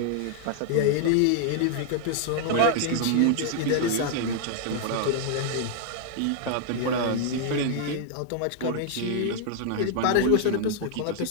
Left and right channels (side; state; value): both; different; correlation 0.00